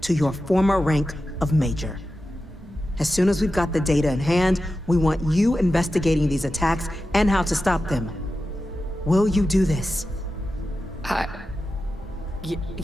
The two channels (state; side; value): normal; both; correlation 0.92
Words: your former rank of Major. As soon as we've got the data in hand, we want you investigating these attacks and how to stop them. Will you do this?